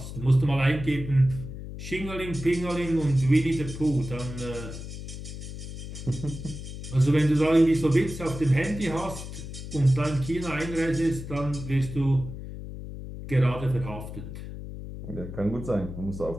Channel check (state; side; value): noise; left; hum, 10 dB below the sound